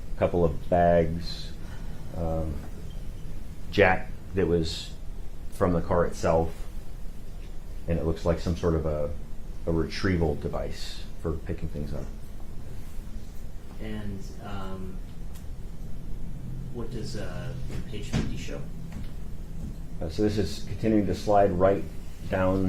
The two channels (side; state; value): both; identical; correlation 1.00